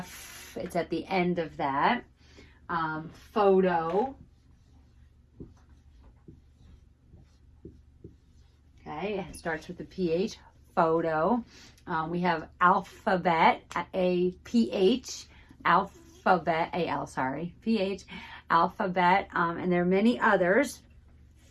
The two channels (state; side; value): identical; both; correlation 1.00